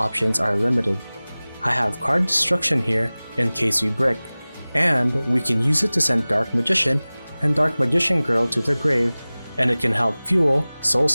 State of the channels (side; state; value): both; inverted; correlation -0.99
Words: are limited. I have card destruction here in case we brick, and we can use it to send Dark Magician and Dark Magician Girl to the grave, and it can help fuel Soul